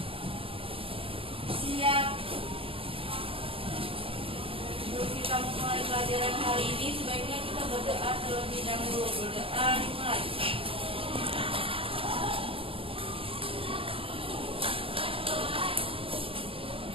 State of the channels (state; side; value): late; left; 0.27 ms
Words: Siap. Sebelum kita mulai pelajaran hari ini, sebaiknya kita berdoa terlebih dahulu. Berdoa dimulai.